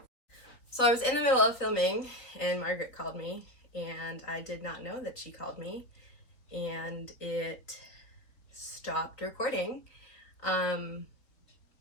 So I was in the middle of filming and Margaret called me, and I did not know that she called me, and it stopped recording.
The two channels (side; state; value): right; late; 3.7 ms